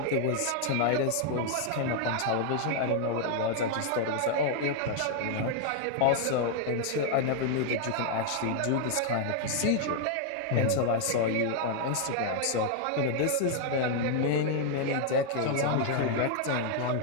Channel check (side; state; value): both; different; correlation 0.00